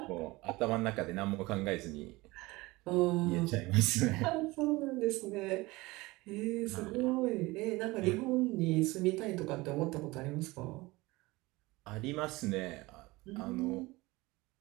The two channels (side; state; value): left; quieter; 21.5 dB